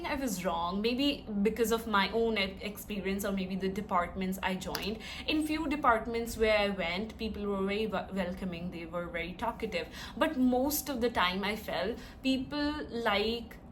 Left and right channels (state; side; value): identical; both; correlation 1.00